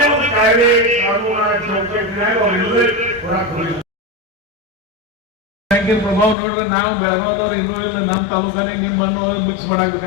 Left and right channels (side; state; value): right; drops out; at 6.4 s